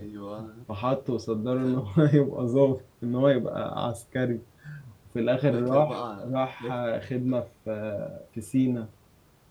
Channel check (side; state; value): both; identical; correlation 1.00